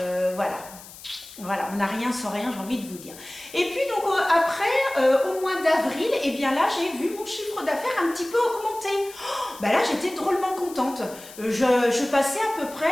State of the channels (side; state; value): left; noise; hiss, 17 dB below the sound